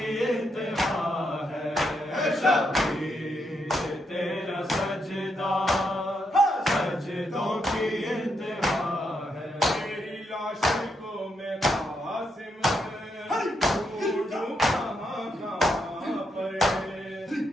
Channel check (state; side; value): normal; both; correlation 0.80